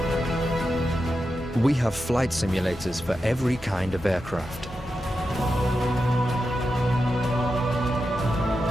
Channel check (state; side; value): normal; both; correlation 0.89